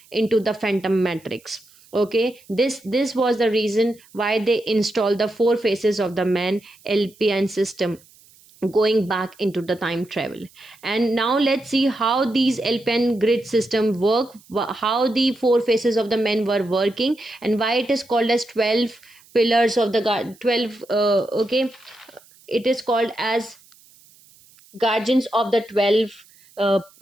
into the phantom matrix. Okay, this was the reason why they installed the four faces of the man LPN system, going back into the time travel. And now let's see how these LPN grid system work, how the four faces of the men were working, and why it is called as 12 pillars of the god 12 okay, it is called as guardians of the 12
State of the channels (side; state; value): right; noise; hiss, 28 dB below the sound